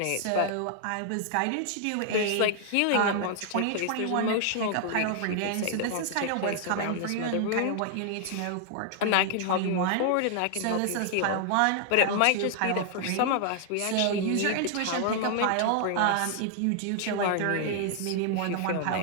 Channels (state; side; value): different; both; correlation 0.00